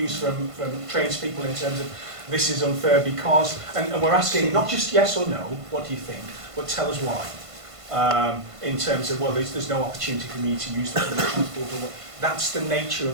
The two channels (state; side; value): late; left; 1.5 ms